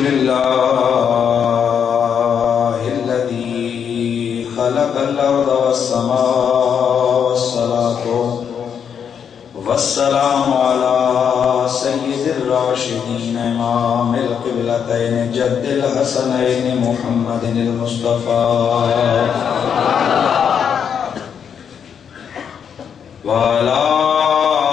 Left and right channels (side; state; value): right; quieter; 7.6 dB